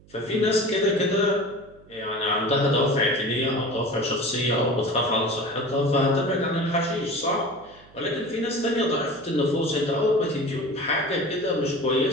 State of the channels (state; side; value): noise; right; hum, 26 dB below the sound